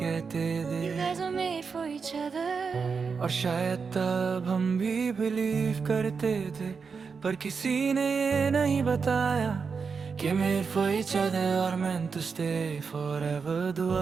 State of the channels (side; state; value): left; quieter; 5.4 dB